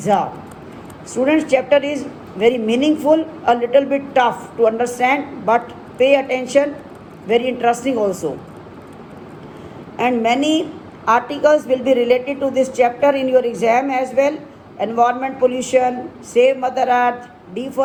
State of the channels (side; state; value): both; identical; correlation 1.00